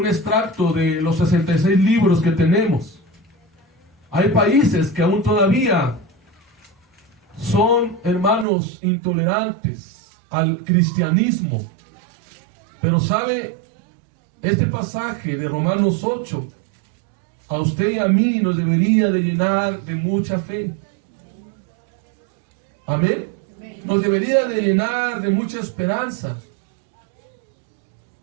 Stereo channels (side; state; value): left; drops out; at 8.5 s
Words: extracto de los 66 libros que tenemos. Hay países que aún todavía son, hermanos, intolerantes al cristianismo. Pero sabe, este pasaje de Romanos 8, a usted y a mí nos debería de llenar de mucha fe. Amén. Nos debería de llenar de mucha esperanza.